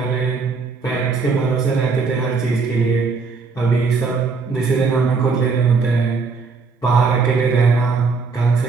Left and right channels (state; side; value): quieter; left; 4.7 dB